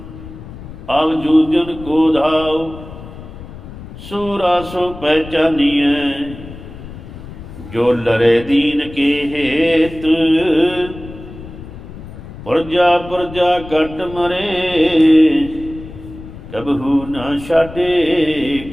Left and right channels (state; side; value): noise; left; rumble, 14 dB below the sound